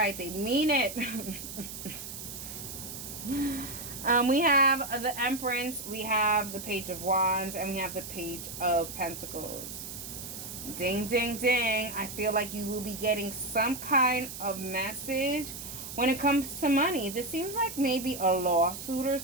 they mean it. We have the Empress, we have the Page of Wands, and we have the Page of Pentacles. Ding, ding, ding. I feel like you will be getting some kind of message when it comes to money. This seems like maybe a lawsuit or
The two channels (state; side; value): noise; right; hiss, 9 dB below the sound